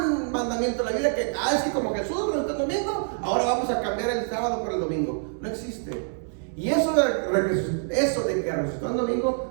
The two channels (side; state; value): left; silent; digital silence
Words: mandamiento en la Biblia que, es que como Jesús resucitó el domingo, ahora vamos a cambiar el sábado por el domingo. No existe. Y eso de que resucitó el